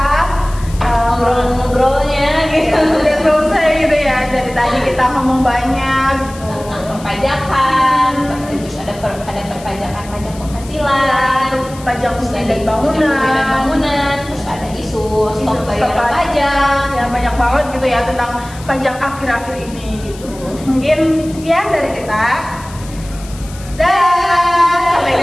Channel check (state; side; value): noise; left; hiss, 19 dB below the sound